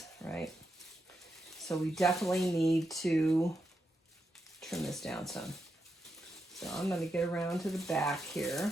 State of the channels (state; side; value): normal; both; correlation 0.85